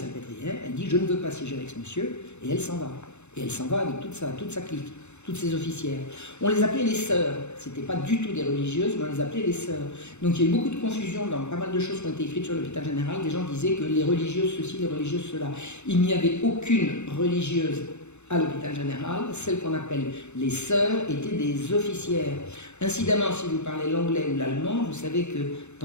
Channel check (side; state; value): right; late; 0.82 ms